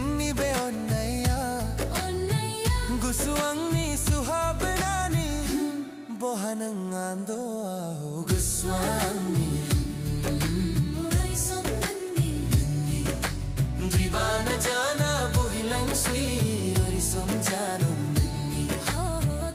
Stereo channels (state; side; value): identical; both; correlation 1.00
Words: बे ओन्नैया गुसुअंगनी सुहाबनानी बोहनंग आंदो आओ गुसुअंगनी Dibana jana bohilang swi arisam janu ninni oh